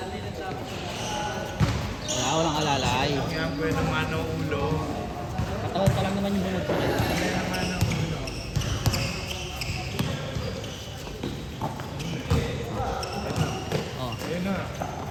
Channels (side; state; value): both; identical; correlation 1.00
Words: Wala, walang alalay. Kaya ang buwan naman ang ulo. Katawan pa lang naman yung bungod ko. Kaya naman ang ulo. Oh, Ayun na.